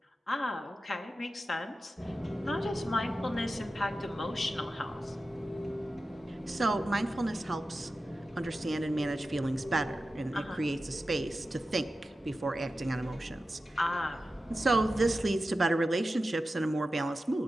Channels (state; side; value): normal; both; correlation 0.93